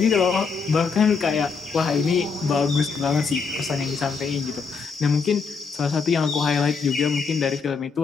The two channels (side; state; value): right; quieter; 5.2 dB